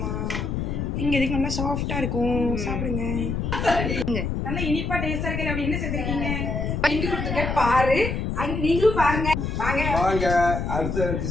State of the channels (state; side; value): noise; left; rumble, 2 dB below the sound